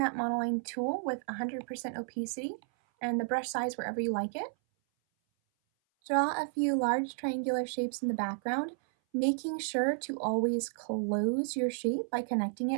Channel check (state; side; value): silent; left; 56 dB below the other